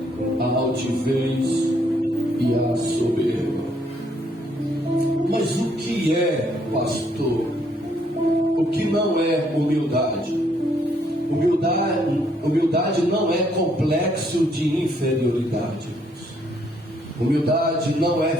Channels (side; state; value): both; normal; correlation 0.69